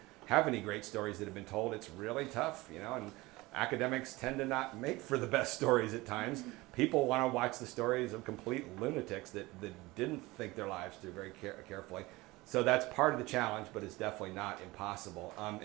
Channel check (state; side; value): quieter; left; 21.0 dB